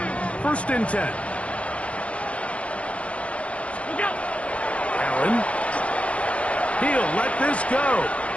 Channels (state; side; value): late; right; 0.063 ms